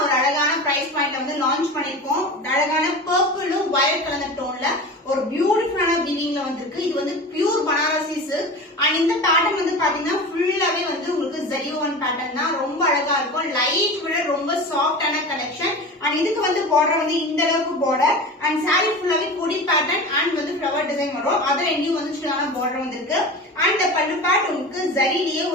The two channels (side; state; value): both; normal; correlation 0.31